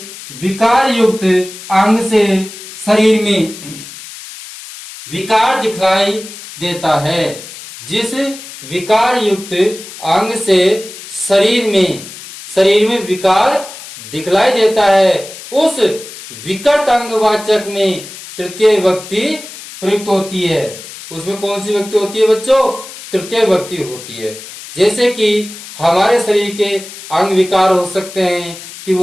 विकार युक्त अंग से शरीर में विकार दिखलाई देता है, जिस विकार युक्त अंग से शरीर में, शरीर में विकार दिखलाई देता है, उस विकट अंगवाचक में तृतीय विभक्ति प्रयुक्त होती है। उसमें कौन सी विभक्ति होती है बच्चों? तृतीय विभक्ति होती है। जैसे कि हमारे शरीर के अंग विकार हो सकते हैं कि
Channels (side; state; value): left; noise; hiss, 14 dB below the sound